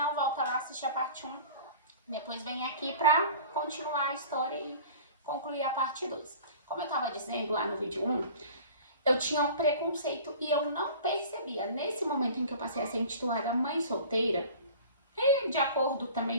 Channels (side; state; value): both; inverted; correlation -0.43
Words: volta lá assistir a parte 1. Depois vem aqui pra continuar a história e concluir a parte 2. Como eu tava dizendo lá no vídeo 1, eu tinha um preconceito e eu não percebia. Nesse momento em que eu passei a ser intitulada mãe solteira, e de acordo